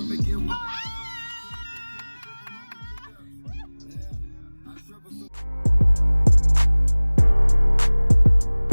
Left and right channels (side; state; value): both; inverted; correlation -1.00